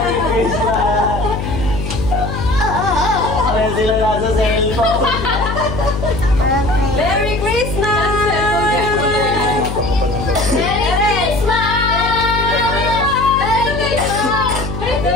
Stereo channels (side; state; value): left; noise; hum, 5 dB below the sound